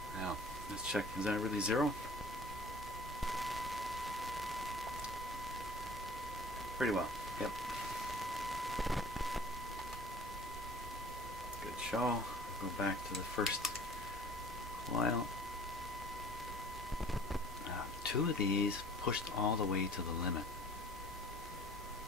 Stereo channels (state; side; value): normal; both; correlation 0.49